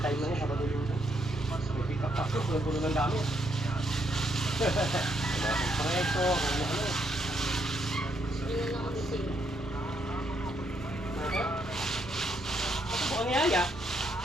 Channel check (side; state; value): both; normal; correlation 0.75